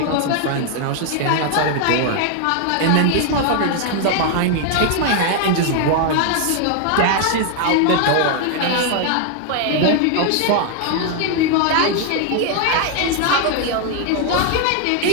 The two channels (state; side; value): different; both; correlation 0.01